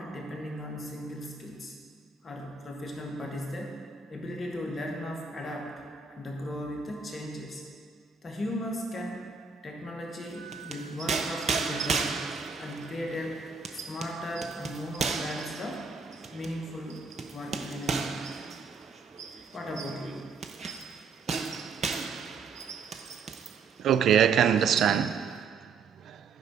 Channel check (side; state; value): left; quieter; 5.0 dB